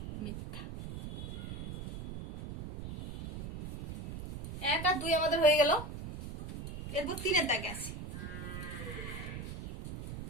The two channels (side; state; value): right; noise; rumble, 7 dB below the sound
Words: মিথ্যা। 1 আর 2 আমাদের হয়ে গেল। এরপর 3-এর দাগে আসি।